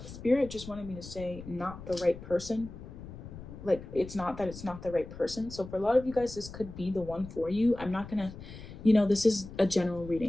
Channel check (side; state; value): left; noise; rumble, 13 dB below the sound